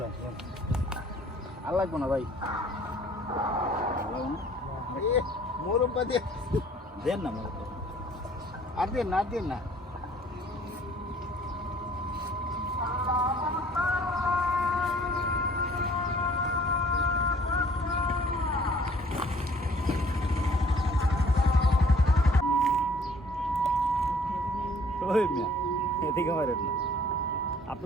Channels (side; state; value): both; normal; correlation 0.56